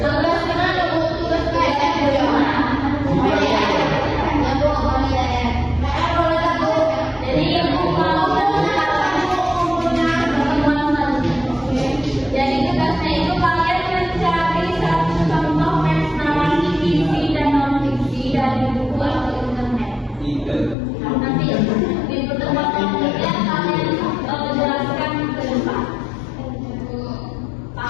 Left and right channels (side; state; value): right; drops out; at 20.8 s